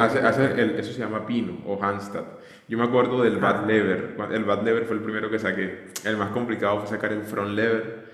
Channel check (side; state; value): both; identical; correlation 1.00